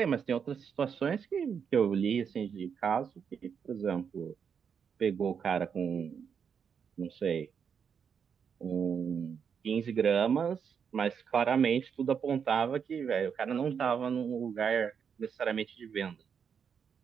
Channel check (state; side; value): quieter; left; 7.0 dB